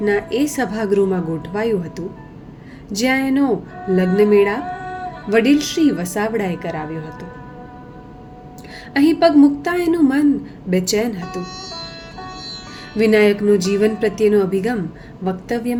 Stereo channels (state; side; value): identical; both; correlation 1.00